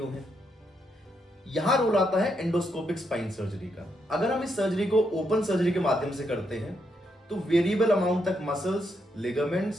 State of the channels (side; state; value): both; normal; correlation 0.79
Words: हैं? यहां रोल आता है एंडोस्कोपिक स्पाइन सर्जरी का। अगर हम इस सर्जरी को ओपन सर्जरी के माध्यम से करते हैं तो वेरिएबल अमाउंट तक मसल्स,